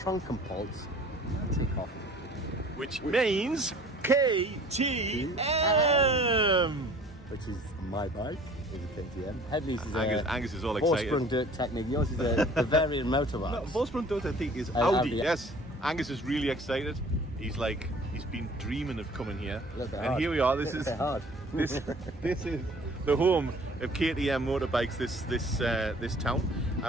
Matikhoff. Which means KTM! Which is my bike, is a KTM. Headley's is Angus is all excited. Horse-sprung dirt technique. Yours is a Bavarian motorbike. No, Volkswagen Dirt, I think, is Audi. Audi. Yes. Angus is really excited. He's been dreaming of coming here. And hard. Here we are. This is hard. this is the home of KTM motorbikes, this town.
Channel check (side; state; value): both; normal; correlation 0.50